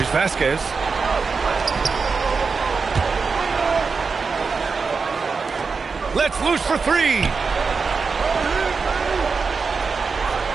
Vasquez. Let's loose for three.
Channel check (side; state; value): left; quieter; 4.9 dB